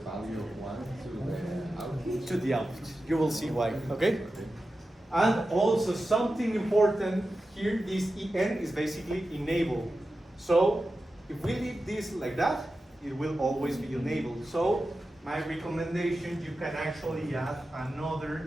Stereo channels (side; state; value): both; normal; correlation 0.92